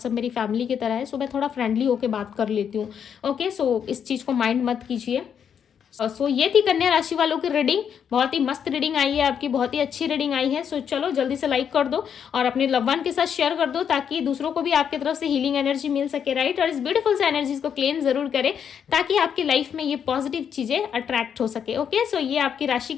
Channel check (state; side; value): quieter; right; 7.9 dB